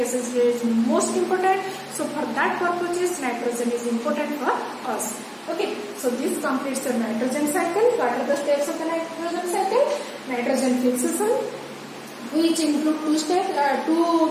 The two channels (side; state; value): both; identical; correlation 1.00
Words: is most important. So for that purposes, nitrogen is important for us. Okay, so this completes the nitrogen cycle. What are the steps of the nitrogen cycle? Nitrogen fixation, which include